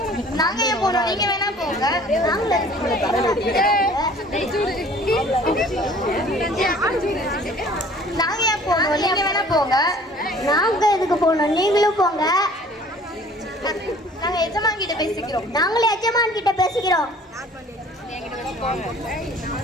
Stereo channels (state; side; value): normal; both; correlation 0.51